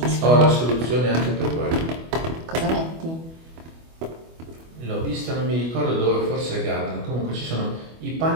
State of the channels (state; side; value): late; left; 25 ms